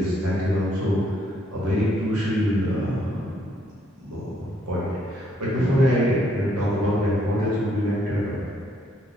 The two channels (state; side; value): normal; both; correlation 0.70